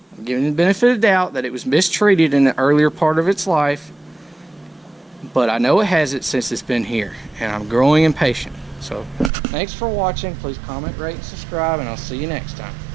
I'm giving it the benefit of the doubt that it was mistreated in the earlier part of its life. But I know it hasn't since it's been here, and I'm growing impatient. So thanks for watching. Please comment, rate, and subscribe, and I'll see you next time.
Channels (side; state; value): left; drops out; at 9.3 s